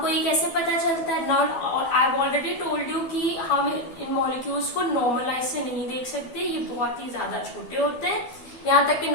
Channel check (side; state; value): right; late; 12 ms